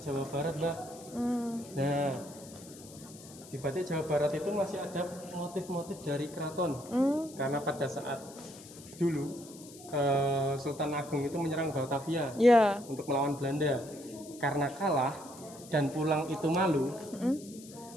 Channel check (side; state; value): left; noise; hiss, 18 dB below the sound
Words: Jawa Barat, Mbak. Hmm. Nah, di batik Jawa Barat itu masih ada motif-motif dari keraton. Karena pada saat dulu Sultan Agung itu menyerang Batavia Ya. untuk melawan Belanda. Karena kalah dan pulang itu malu,